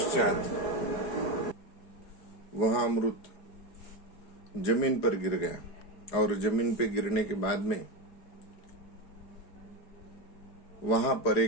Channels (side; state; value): right; late; 4.7 ms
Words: वह अमृत जमीन पर गिर गया और जमीन पे गिरने के बाद में वहां पर